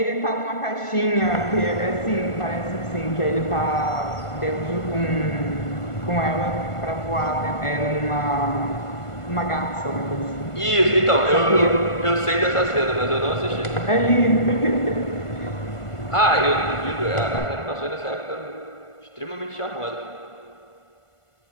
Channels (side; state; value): right; late; 1.5 ms